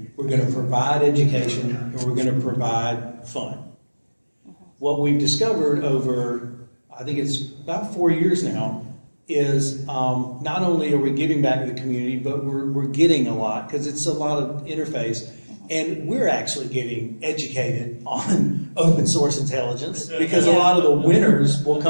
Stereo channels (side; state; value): both; inverted; correlation -1.00